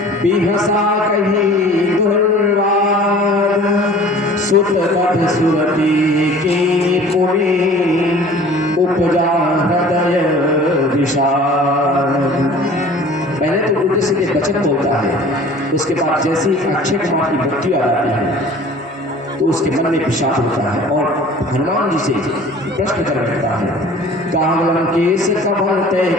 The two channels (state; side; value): normal; both; correlation 0.46